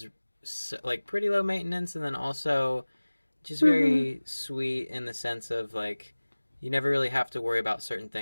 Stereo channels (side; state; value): both; inverted; correlation -1.00